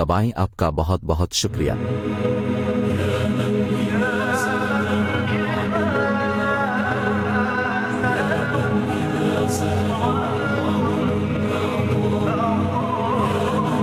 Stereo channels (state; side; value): identical; both; correlation 1.00